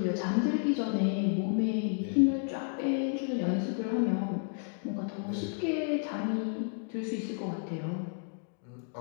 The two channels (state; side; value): silent; right; 57 dB below the other